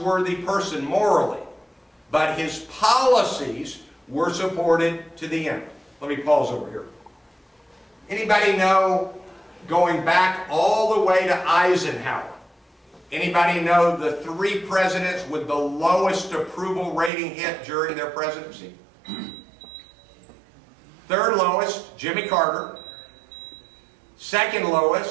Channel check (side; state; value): left; drops out; at 17.1 s